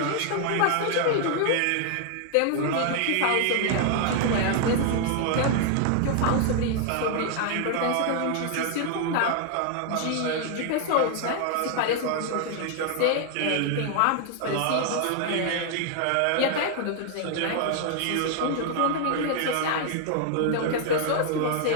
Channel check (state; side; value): different; both; correlation 0.00